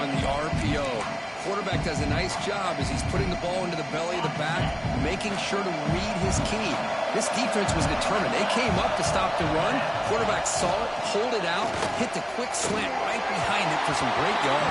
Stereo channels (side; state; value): both; identical; correlation 1.00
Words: the RPO. Quarterback does a nice job as he's putting the ball into the belly of the back, making sure to read his key. This defense was determined. They came up to stop the run. Quarterback saw it, pulled it out, hit the quick slant right behind it for some great